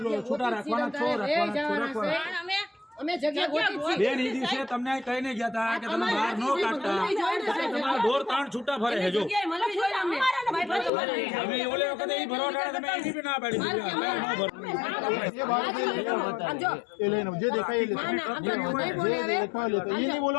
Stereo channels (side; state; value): right; drops out; at 10.9 s